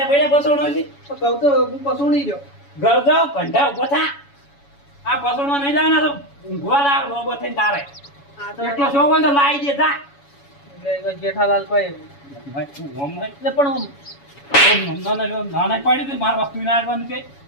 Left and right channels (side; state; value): right; late; 7.1 ms